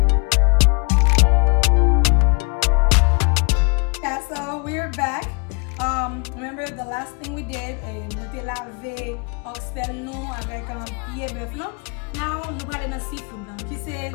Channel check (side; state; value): right; quieter; 33.6 dB